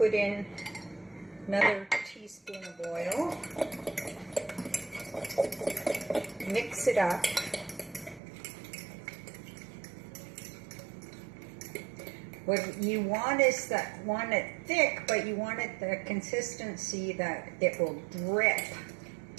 in another teaspoon of oil. Mix it up. What you want is that want it thick, but you want it the consistency that it will drip.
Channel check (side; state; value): left; drops out; at 8.2 s